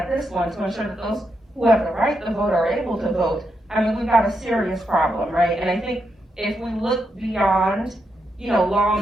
this one to ensure that those who have the right to vote are able to vote. I mean, we've got a serious problem, right? And I think if we look beyond,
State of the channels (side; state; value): both; normal; correlation 0.83